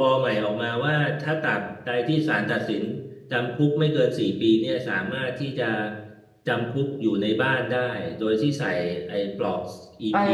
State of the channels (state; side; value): identical; both; correlation 1.00